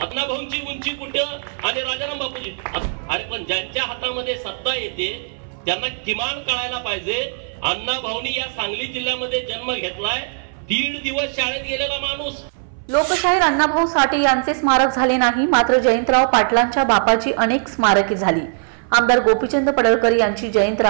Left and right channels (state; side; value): silent; left; 61 dB below the other